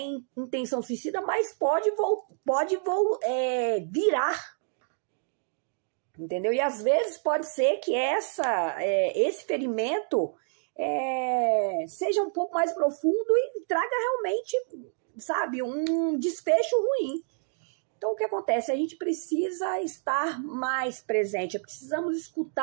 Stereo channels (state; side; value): silent; left; digital silence